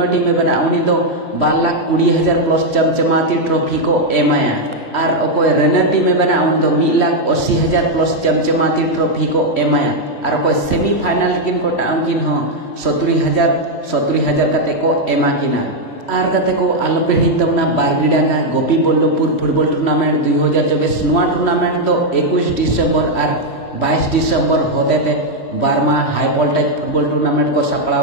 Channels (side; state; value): right; late; 3.4 ms